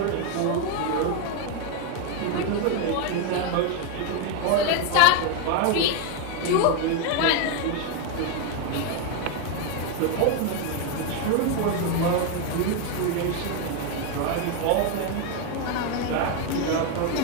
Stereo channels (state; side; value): different; both; correlation 0.01